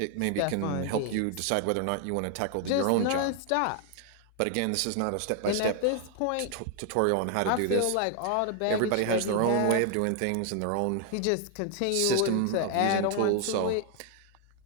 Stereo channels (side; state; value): both; different; correlation 0.00